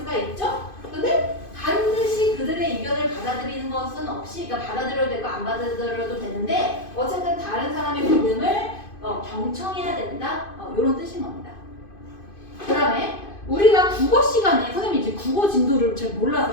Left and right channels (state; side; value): late; right; 2.5 ms